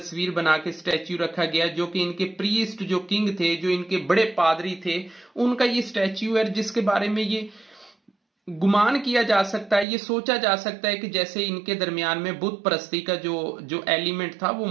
बना के स्टैच्यू रखा गया जो कि इनके प्रीस्ट, जो किंग थे, जो इनके बड़े पादरी थे, उनका ये स्टैच्यू है जिसके बारे में ये गुमान किया जा सकता है, ये सोचा जा सकता है कि जैसे इनके दरमियान में बुत परस्ती का जो एलिमेंट था वो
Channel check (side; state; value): left; drops out; at 9.9 s